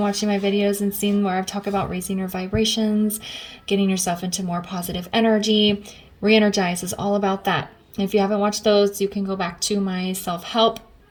my videos and seen where I've talked about raising your vibrations, getting yourself into more positive energy, re-energize is all about that. If you haven't watched those, you can go back to my self-help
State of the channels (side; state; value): both; identical; correlation 1.00